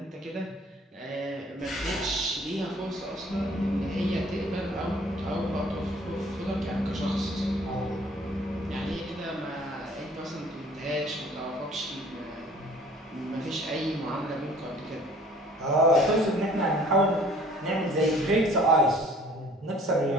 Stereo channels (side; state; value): both; normal; correlation 0.53